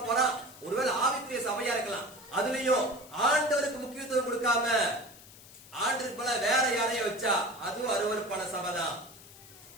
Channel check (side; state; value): left; noise; hiss, 20 dB below the sound